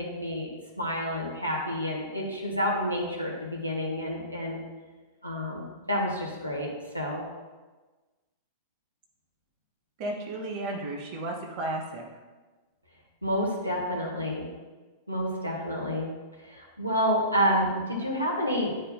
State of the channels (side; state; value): both; inverted; correlation -0.38